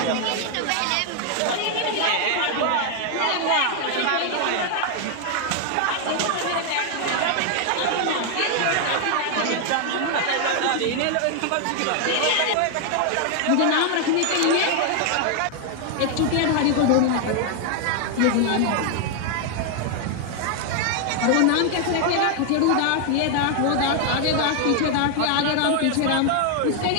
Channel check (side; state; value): both; different; correlation 0.00